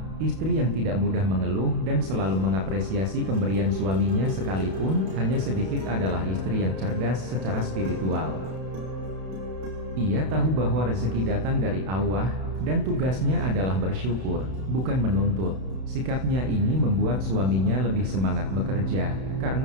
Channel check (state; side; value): late; left; 32 ms